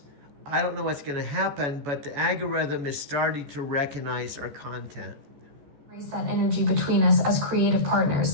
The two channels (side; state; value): left; late; 14 ms